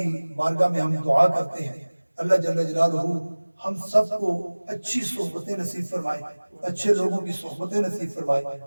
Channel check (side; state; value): both; inverted; correlation -1.00